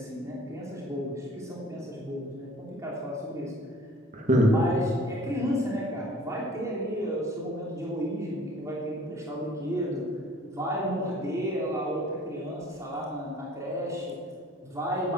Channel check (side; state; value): both; normal; correlation 0.51